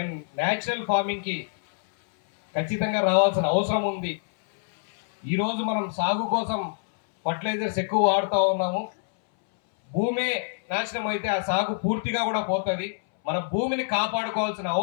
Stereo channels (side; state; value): right; silent; 61 dB below the other